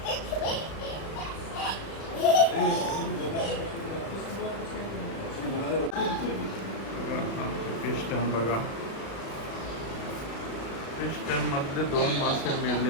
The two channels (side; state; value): right; late; 36 ms